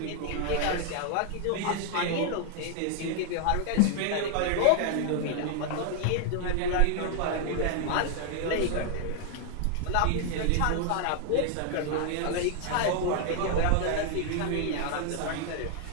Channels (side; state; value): both; different; correlation 0.00